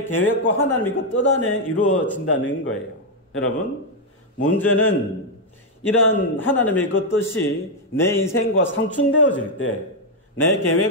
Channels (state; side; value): normal; both; correlation 0.00